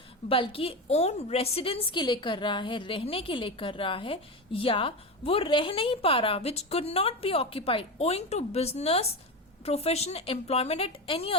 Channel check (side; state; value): both; normal; correlation 0.20